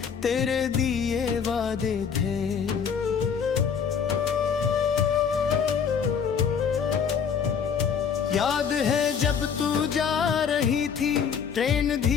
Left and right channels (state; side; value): quieter; right; 6.9 dB